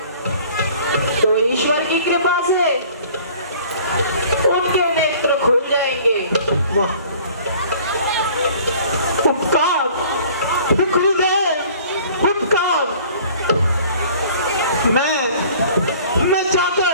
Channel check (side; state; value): both; inverted; correlation -0.50